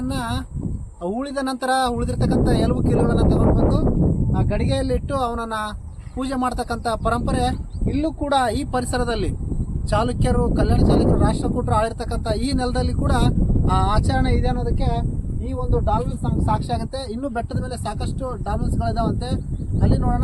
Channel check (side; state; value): both; identical; correlation 1.00